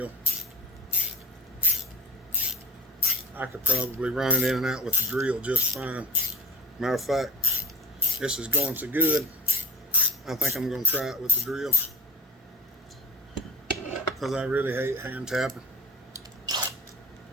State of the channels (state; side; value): normal; both; correlation 0.35